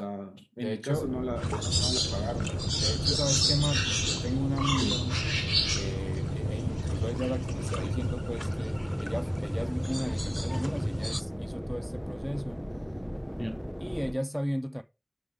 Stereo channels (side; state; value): both; identical; correlation 1.00